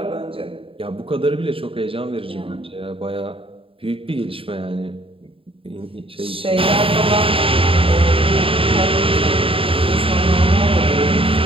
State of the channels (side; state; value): left; late; 0.27 ms